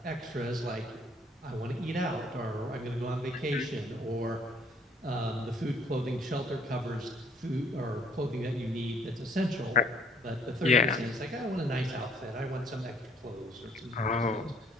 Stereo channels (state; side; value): normal; both; correlation 0.61